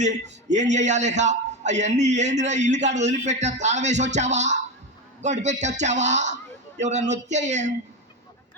చేయాలి? ఇక అవన్నీ ఏందిరా, ఇల్లు కాడ వదిలిపెట్టా, తాళం వేసి వచ్చావా, గడి పెట్టి వచ్చావా, ఎవరన్నా వచ్చే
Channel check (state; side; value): normal; both; correlation 0.16